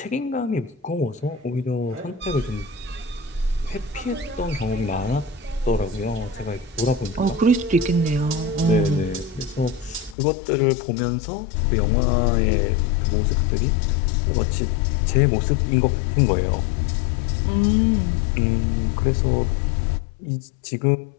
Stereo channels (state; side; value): drops out; right; at 10.2 s